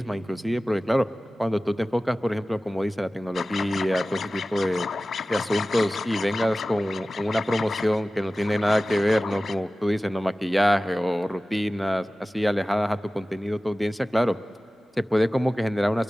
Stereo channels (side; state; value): both; normal; correlation 0.97